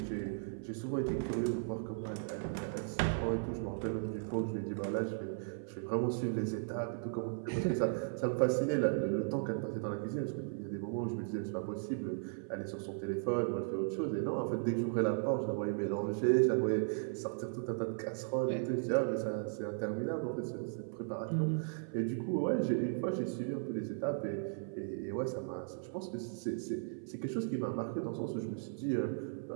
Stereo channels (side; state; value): left; silent; 53 dB below the other